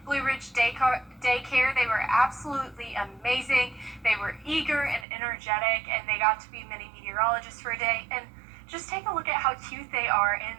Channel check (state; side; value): drops out; left; at 5.1 s